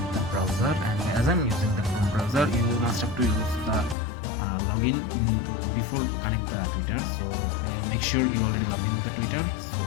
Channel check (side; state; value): right; drops out; at 4.0 s